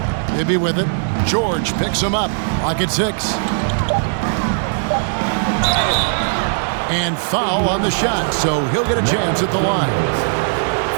Bibby with it. George picks him up. Lock at 6. And foul on the shot, so he'll get a chance at the line.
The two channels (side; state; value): left; silent; digital silence